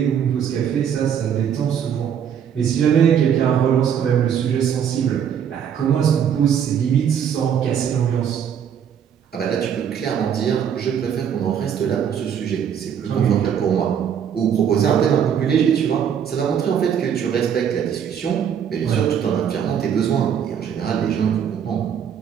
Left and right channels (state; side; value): quieter; left; 8.4 dB